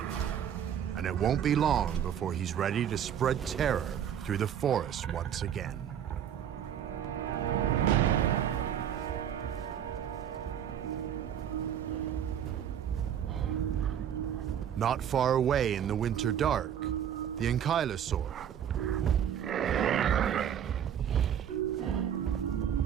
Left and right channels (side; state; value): left; quieter; 9.3 dB